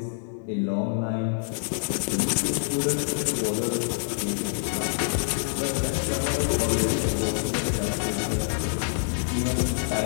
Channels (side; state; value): right; silent; digital silence